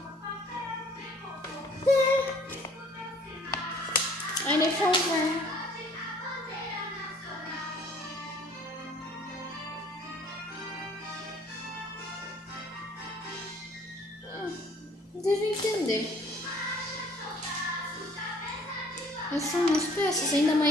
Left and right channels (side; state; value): both; normal; correlation 0.56